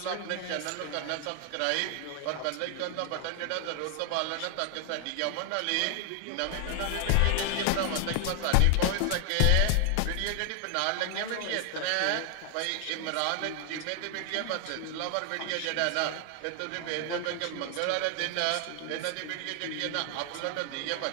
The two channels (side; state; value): both; different; correlation 0.00